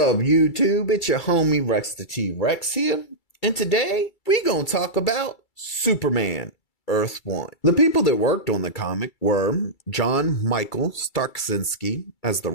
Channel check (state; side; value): late; right; 2.3 ms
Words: YouTube? It's your homie Rex the T-Rex here. And today, we gonna talk about Superman, Earth 1. The people that worked on the comic were John Michael Starksinski as the